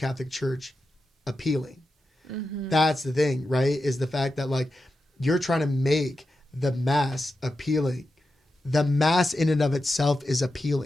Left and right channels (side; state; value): both; normal; correlation 0.90